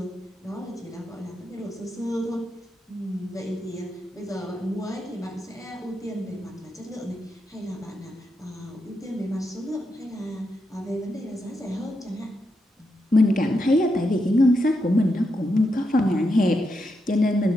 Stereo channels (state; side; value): normal; both; correlation 0.84